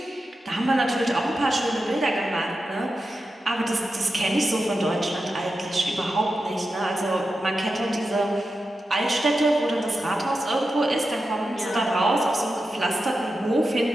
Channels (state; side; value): normal; both; correlation 0.90